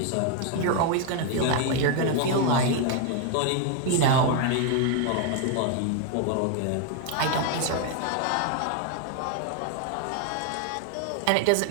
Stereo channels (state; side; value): different; both; correlation 0.01